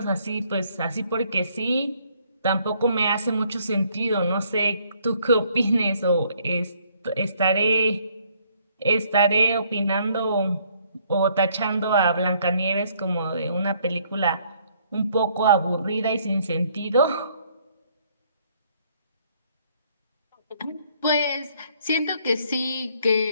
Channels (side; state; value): both; inverted; correlation -0.65